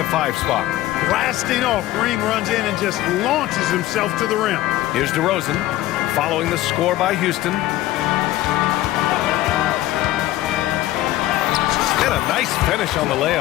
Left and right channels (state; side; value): quieter; right; 15.4 dB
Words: 5 spot. Blasting off, Green runs in and just launches himself to the rim. Here's DeRozan following the score by Houston. And a nice finish on the